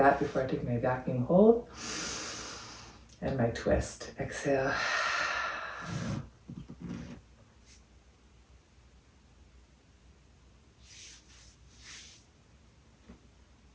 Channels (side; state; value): both; identical; correlation 1.00